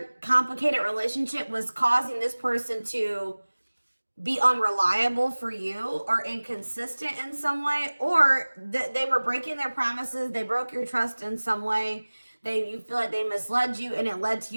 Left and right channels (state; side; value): inverted; both; correlation -1.00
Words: complicated relationship was causing this person to be unreliable for you or inconsistent in some way, or they were breaking their promises. They broke your trust in some way. You feel like they misled you, and it led to